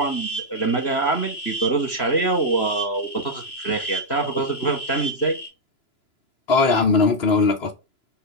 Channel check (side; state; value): right; late; 3.0 ms